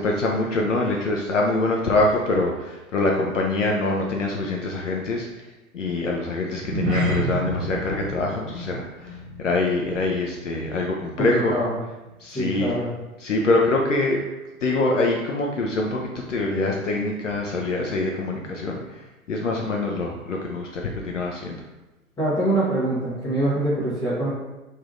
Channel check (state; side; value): normal; both; correlation 0.41